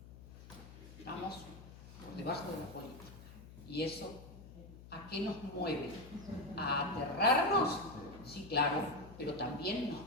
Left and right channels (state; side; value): noise; left; hum, 16 dB below the sound